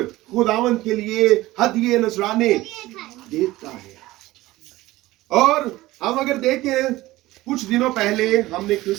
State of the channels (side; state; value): left; quieter; 17.8 dB